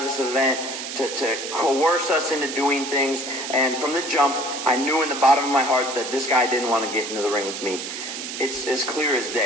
this event, to coerce us into doing things. And from the jump, I knew in the bottom of my heart that this guy didn't want to get into the ring with me. It's as clear as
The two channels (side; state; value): right; noise; hiss, 7 dB below the sound